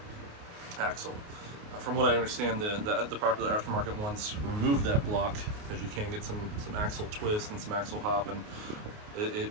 axle. From what I understand, the popular aftermarket ones remove that block because you can get some axle twist and some axle hop, and it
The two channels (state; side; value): late; left; 28 ms